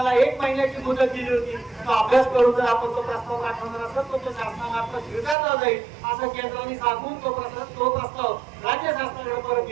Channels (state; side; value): drops out; left; at 5.4 s